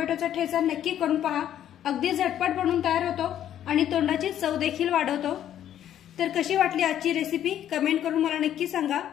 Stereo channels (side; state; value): right; quieter; 10.9 dB